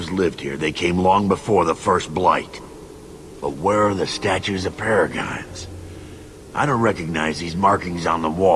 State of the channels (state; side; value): identical; both; correlation 1.00